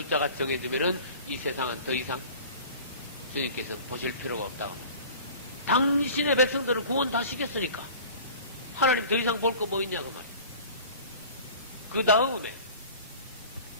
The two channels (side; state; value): both; inverted; correlation -0.42